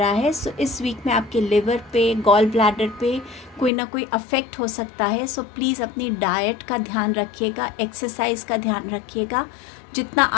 है? सो इस वीक में आपके लिवर पे, गॉल ब्लैडर पे कोई ना कोई अफेक्ट हो सकता है। सो प्लीज़ अपनी डाइट का ध्यान रखिएगा, एक्सरसाइज का ध्यान रखिएगा। जितना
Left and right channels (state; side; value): drops out; right; at 3.7 s